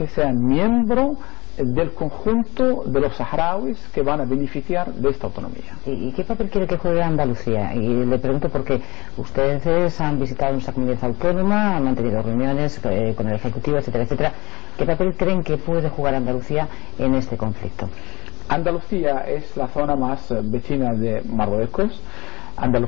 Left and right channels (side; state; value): right; quieter; 23.2 dB